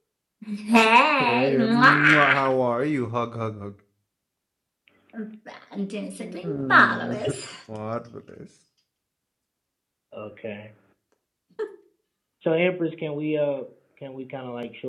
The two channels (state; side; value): identical; both; correlation 1.00